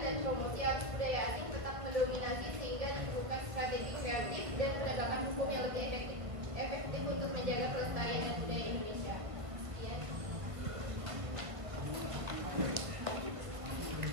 dan promosi, arus budaya asing tetap mendominasi sehingga diperlukan strategi kreatif, dan penegakan hukum yang lebih efektif untuk menjaga kelestarian dan budaya Indonesia. Sekian.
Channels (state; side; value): late; left; 1.5 ms